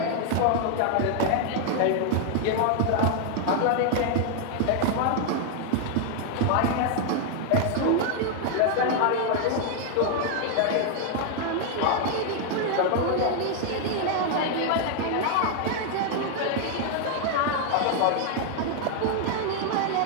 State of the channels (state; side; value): different; both; correlation 0.00